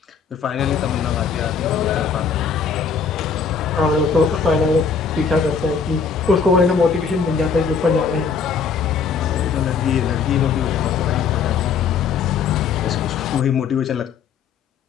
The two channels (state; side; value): quieter; right; 5.9 dB